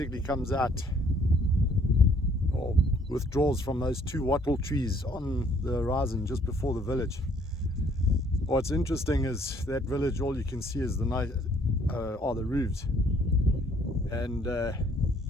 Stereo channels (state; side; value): normal; both; correlation 0.63